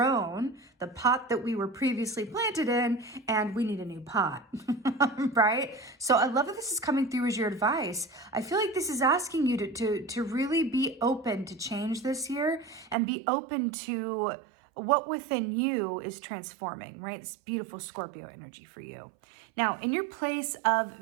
the pot that we were previously planted in and we need a new pot, right? So I love that this is coming through as your advice. I feel like this is asking you to really be open to change this year and be open to what within you is transforming, right? It's beautiful Scorpio energy for you. Now, in your place of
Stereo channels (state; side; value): drops out; left; at 13.0 s